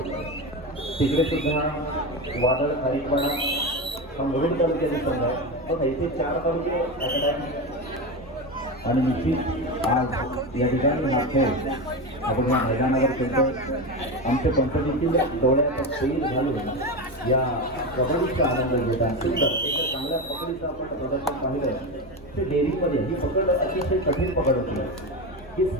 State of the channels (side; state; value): left; noise; hum, 24 dB below the sound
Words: तिकडे सुद्धा वादळ खारीपाडा मुरुड तालुक्याचे संघ आहे. पण इथे 4 तालुके आणि निश्चित आज या ठिकाणी हा खेळ आपण या मैदानावर खेळतो. आमच्या कंपनीतील डोळ्याचा सैल घालून या कबड्डीचा आनंद घेत आहे. सुंदर एक चांगल्या पकडीचं आपण प्रदर्शन पाहिलं. ते डेअरीमध्ये ही पकड अतिशय कठीण पकड होती की